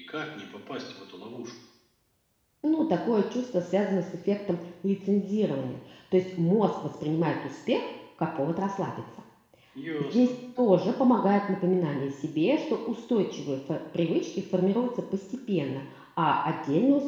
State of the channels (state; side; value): identical; both; correlation 1.00